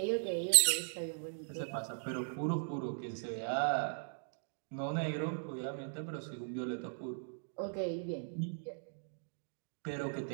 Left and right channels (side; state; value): left; silent; digital silence